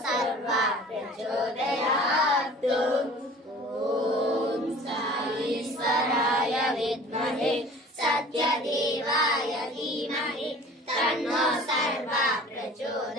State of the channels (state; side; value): normal; both; correlation 0.45